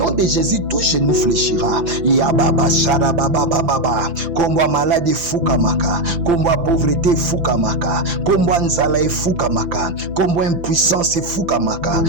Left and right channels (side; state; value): left; late; 5.9 ms